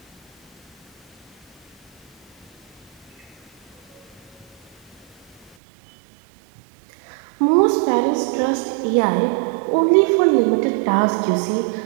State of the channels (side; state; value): left; drops out; at 5.6 s